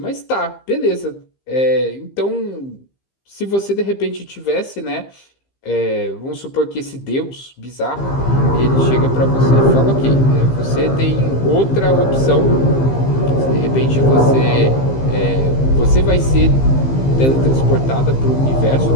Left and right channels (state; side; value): late; right; 15 ms